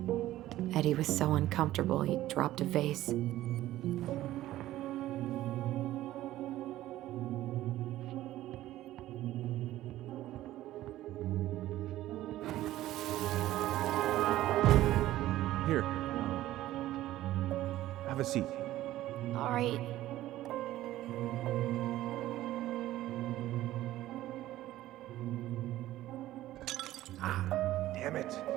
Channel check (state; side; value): quieter; left; 14.8 dB